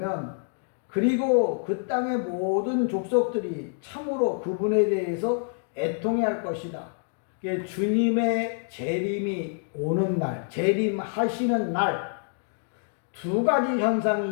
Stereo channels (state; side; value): silent; right; digital silence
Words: 그리고 그 땅의 모든 족속들이 참으로 그분에 대해서 애통해할 것이다. 주님의 재림이 오는 날, 재림하시는 날 두 가지